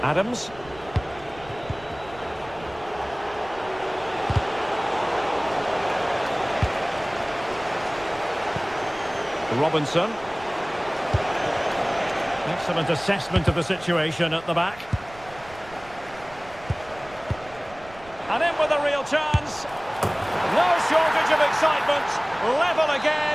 Adams. Robinson. Excellent assessment of the situation at the back. And in with a real chance. No shortage of excitement. Level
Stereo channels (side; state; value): right; noise; rumble, 21 dB below the sound